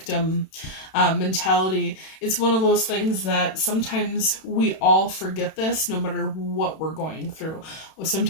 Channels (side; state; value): right; late; 31 ms